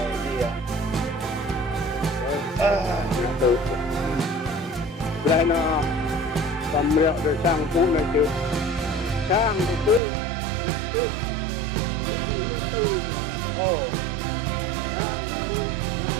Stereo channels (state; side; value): drops out; left; at 10.0 s